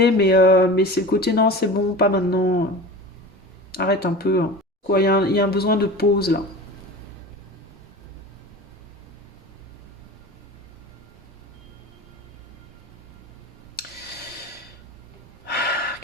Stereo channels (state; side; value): normal; both; correlation 0.34